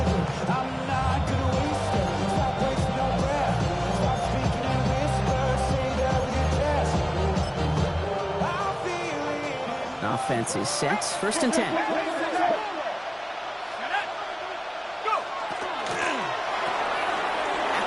Offense is set. 1st and 10.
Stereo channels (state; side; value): identical; both; correlation 1.00